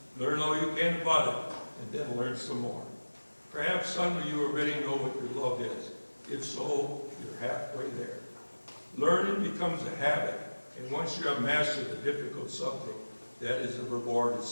learn all you can about it, and then learn some more. Perhaps some of you already know what your love is. If so, you're halfway there. Learning becomes a habit, and once you have mastered a difficult subject, that is a reward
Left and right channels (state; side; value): inverted; both; correlation -1.00